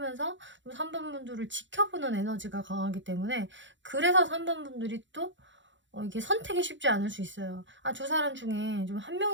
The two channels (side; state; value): left; late; 0.54 ms